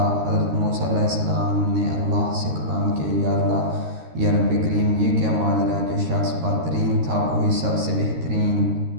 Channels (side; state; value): left; late; 13 ms